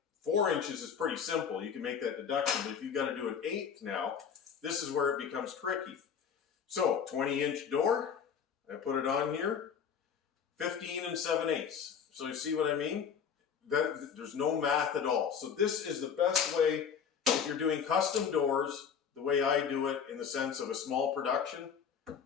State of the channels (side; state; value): right; quieter; 7.2 dB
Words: 4 inches is pretty simple. You can make that deduction. But if you've got to do an 1/8 now, this is where it becomes tricky. So 20-inch door, I put it on here, 15 7/8. So you see what I mean? There's no math at all. So this is the best way if you're doing custom doors, the way I do it in the sense of a small production.